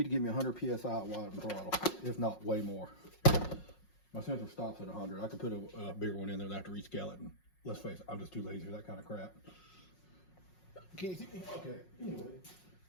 to give me 100 psi at wide and throttle, if not way more. My sensor stops at 100. I could put a bigger one in there, and I have to rescale it, and let's face it, I'm just too lazy for that kind of crap. Can you see me? Okay, anyway,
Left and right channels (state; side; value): late; right; 5.5 ms